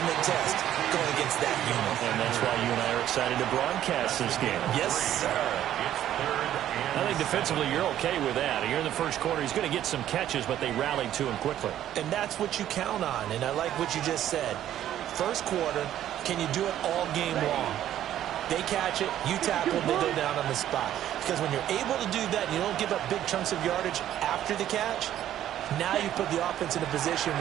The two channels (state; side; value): quieter; left; 11.8 dB